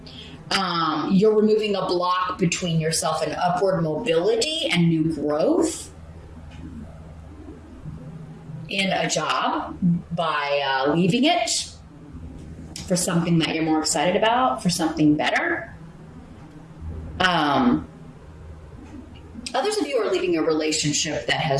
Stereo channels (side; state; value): both; identical; correlation 1.00